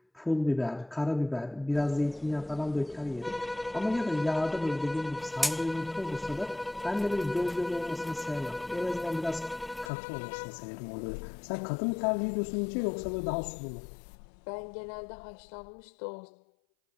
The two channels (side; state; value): right; drops out; at 9.9 s